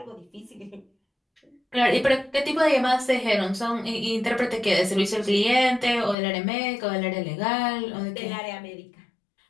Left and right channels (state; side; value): drops out; right; at 6.2 s